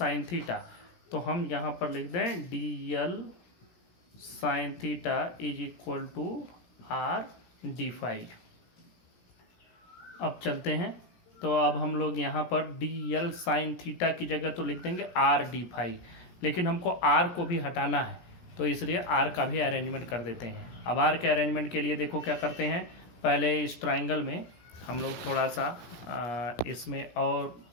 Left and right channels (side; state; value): right; late; 17 ms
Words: थीटा। तो हम यहाँ पर लिख दें DL sine theta is equal to R D phi. अब चलते हैं, तो अब हम लोग यहाँ पर DL साइन थीटा की जगह तो लिख देंगे R D फाई, लेकिन हमको R को भी हटाना है तो इसलिए R का भी अरेंजमेंट कर देते हैं। अब R के अरेंजमेंट के लिए देखो क्या करते हैं, पहले इस ट्राइंगल में हम लोग थोड़ा सा इसमें और